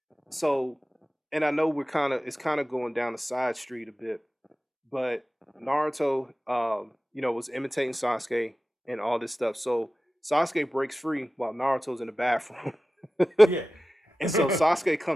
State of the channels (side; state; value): both; normal; correlation 0.95